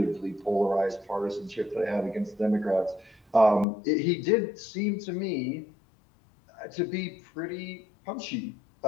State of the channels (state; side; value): drops out; right; at 3.7 s